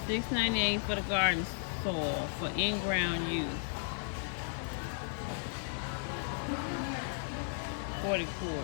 $6.98 for the garden soil for in-ground use. 40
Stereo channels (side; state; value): right; silent; 55 dB below the other